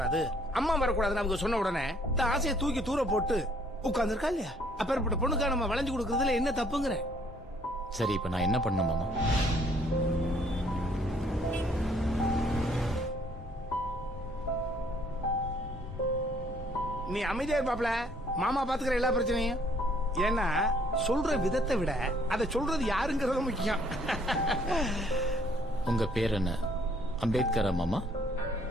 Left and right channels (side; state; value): both; normal; correlation 0.63